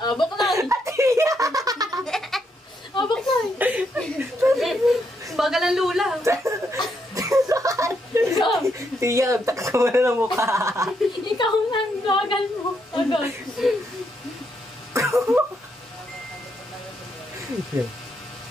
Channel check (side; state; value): both; normal; correlation 0.77